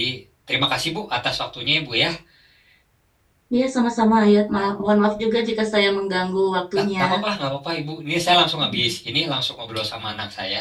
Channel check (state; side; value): identical; both; correlation 1.00